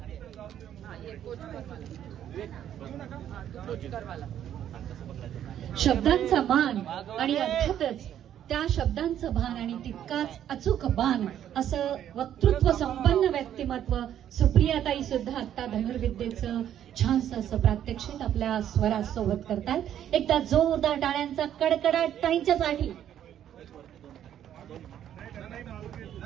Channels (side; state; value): left; quieter; 10.5 dB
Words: शब्दांचा मान आणि अर्थातच त्या शब्दांचं भान आणि तितकाच अचूक बाण असं वक्तृत्व संपन्न व्यक्तिमत्व सुप्रियाताई सुद्धा आता धनुर्विद्येचं छानसं असं प्रात्यक्षिक आपल्या स्वरासोबत करतात. एकदा जोरदार टाळ्यांचा कडकडाट ताईंच्यासाठी.